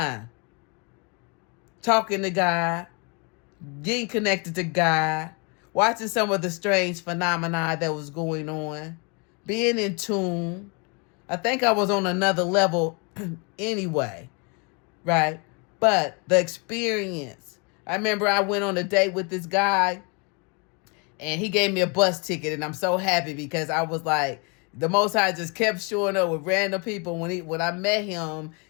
Talking to God, getting connected to God, watching some of the strange phenomena that was going on, being in tune. I think I was on another level anyway, right? But the experience. I remember I went on a date with this guy and he gave me a bus ticket, and I'm so happy because I was like, the Most High just kept showing up with random people. When I met him,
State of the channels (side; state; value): right; quieter; 32.9 dB